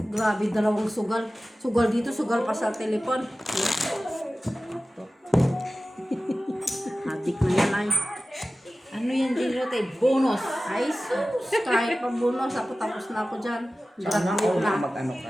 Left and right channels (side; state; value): both; normal; correlation 0.96